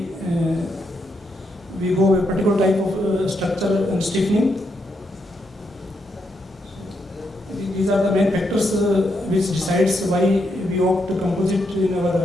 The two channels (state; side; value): normal; both; correlation 0.80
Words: we go a particular type of structure and stiffening. These are the main factors which decides why we opt to composite in